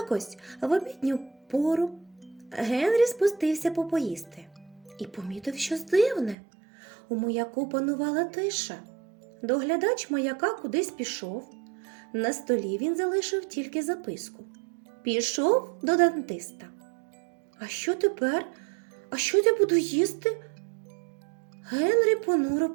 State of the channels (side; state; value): left; drops out; at 6.4 s